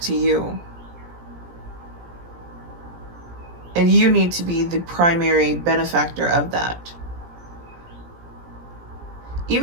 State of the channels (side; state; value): left; late; 17 ms